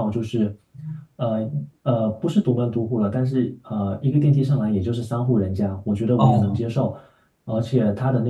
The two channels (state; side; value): identical; both; correlation 1.00